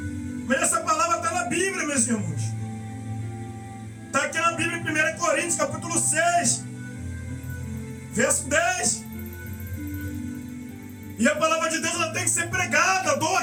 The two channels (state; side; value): identical; both; correlation 1.00